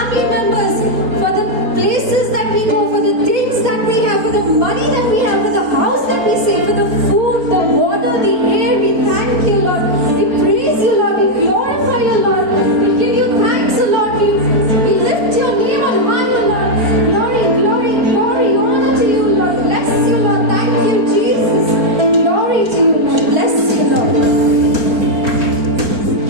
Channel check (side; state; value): left; late; 4.4 ms